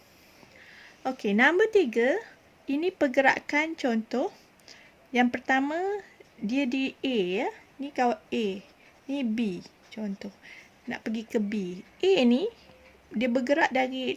Okey, nombor 3. Ini pergerakan contoh. Yang pertama, dia di A ya. Ni kawan A. Ni B. Contoh. Nak pergi ke B. A ni, dia bergerak dari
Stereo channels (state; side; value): identical; both; correlation 1.00